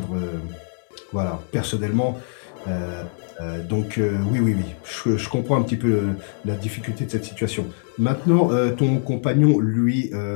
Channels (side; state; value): right; silent; 63 dB below the other